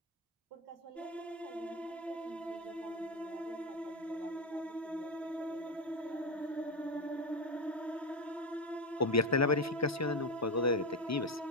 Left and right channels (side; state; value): both; normal; correlation 0.13